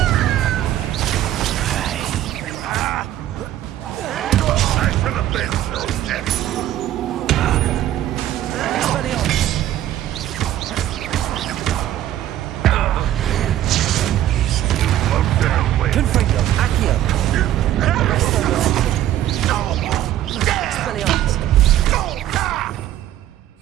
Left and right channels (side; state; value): left; quieter; 12.7 dB